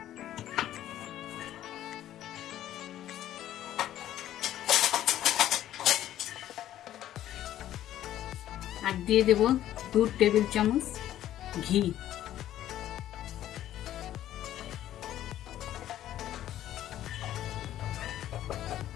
আর দিয়ে দেব 2 টেবিল চামচ ঘি।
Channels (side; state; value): right; quieter; 12.5 dB